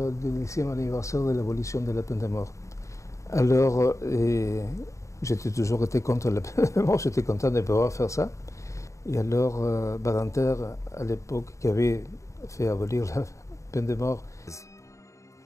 10e anniversaire de l'abolition de la peine de mort. Alors, j'étais toujours été contre la peine de mort, j'étais content de pouvoir faire ça. Et alors, Badinter, à l'époque, qui avait fait abolir la peine de mort.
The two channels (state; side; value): late; right; 0.15 ms